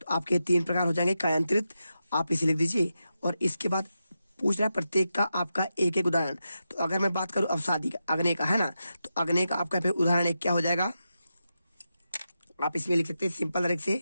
आपके 3 प्रकार हो जाएंगे कायांत्रित, आप इसे लिख दीजिए। और इसके बाद पूछना प्रत्येक का आपका एक एक उदाहरण। तो अगर मैं बात करूं अवसादी का, अग्नि का, है ना, तो अग्नि का आपका यहाँ पे उदाहरण एक क्या हो जाएगा, आप इसमें लिख सकते हैं सिंपल तरीके से।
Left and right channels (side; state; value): both; inverted; correlation -0.89